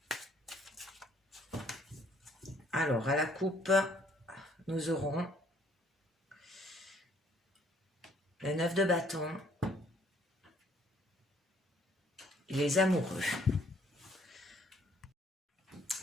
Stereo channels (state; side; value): normal; both; correlation 0.63